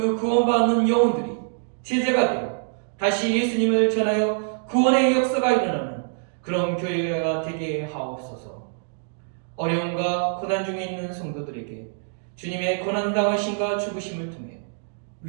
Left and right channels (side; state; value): left; silent; digital silence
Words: 구원받는 영혼들이 제자가 되어 다시 예수님을 전하여 구원의 역사가 일어나는 그런 교회가 되게 하옵소서. 어려움과 고난 중에 있는 성도들에게 주님의 고난당하심과 죽으심을 통해